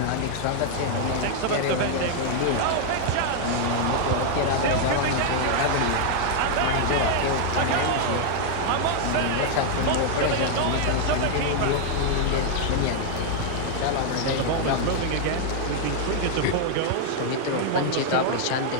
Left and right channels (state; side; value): different; both; correlation 0.00